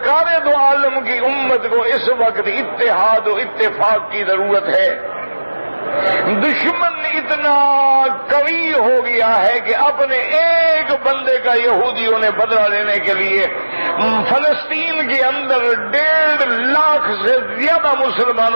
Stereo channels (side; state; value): both; inverted; correlation -1.00